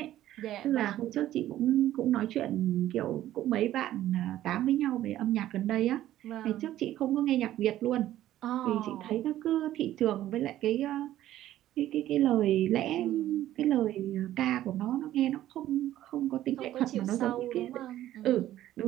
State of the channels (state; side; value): quieter; left; 13.3 dB